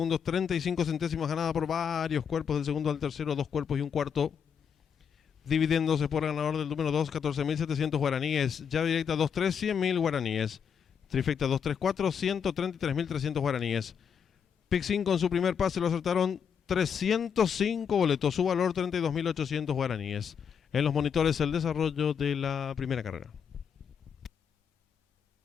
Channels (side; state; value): right; quieter; 7.3 dB